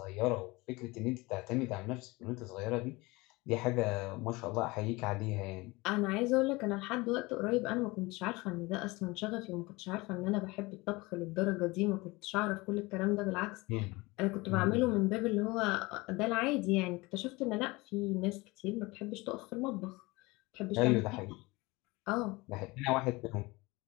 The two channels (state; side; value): quieter; right; 23.1 dB